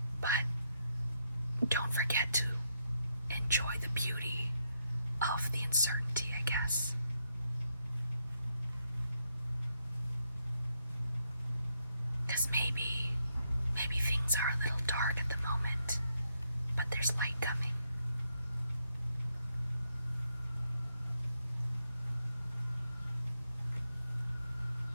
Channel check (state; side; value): inverted; both; correlation -0.79